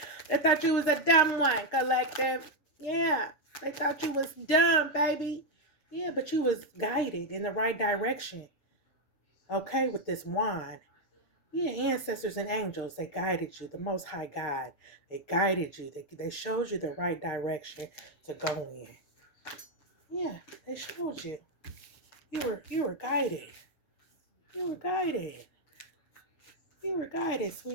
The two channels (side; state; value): right; late; 6.5 ms